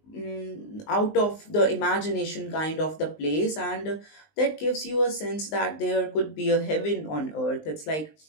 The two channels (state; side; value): late; right; 19 ms